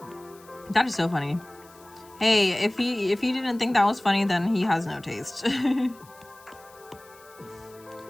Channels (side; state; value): left; noise; hiss, 25 dB below the sound